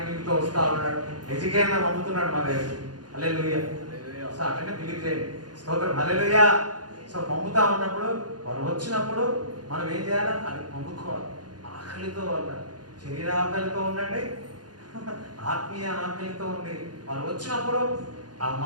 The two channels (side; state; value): left; late; 0.69 ms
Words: వస్తూ ఉన్నాడు, ఎడ్యుకేషన్ పంపుతున్నాడు మా దగ్గర. హల్లెలూయా. సో అట్లనే బిలీవ్ చేయండి. స్తోత్రం. హల్లెలూయా. సో పంపుతా ఉన్నప్పుడు వాళ్ళు వచ్చినప్పుడు మనం ఏం చేయాలి? అది పంపుకోవాలి. ఆకలితో వాళ్ళ శరీర ఆకలితో ఉండండి, ఆత్మీయ ఆకలితో ఉండి వాళ్ళు వచ్చినప్పుడు ఆ